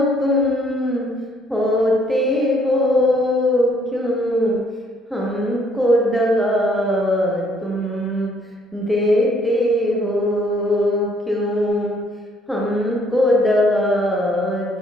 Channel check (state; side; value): normal; both; correlation 0.65